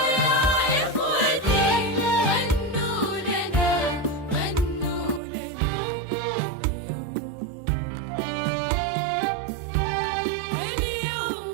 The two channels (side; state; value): left; drops out; at 5.2 s